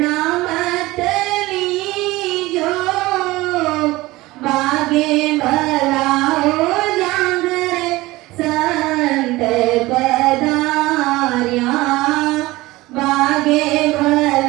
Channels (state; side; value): quieter; left; 19.5 dB